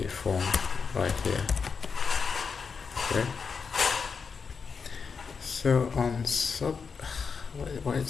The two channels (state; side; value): quieter; right; 5.6 dB